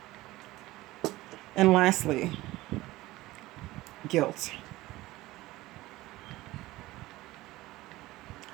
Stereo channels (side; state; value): left; quieter; 18.1 dB